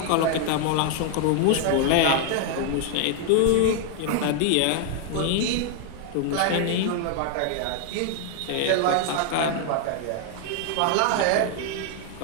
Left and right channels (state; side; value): different; both; correlation 0.00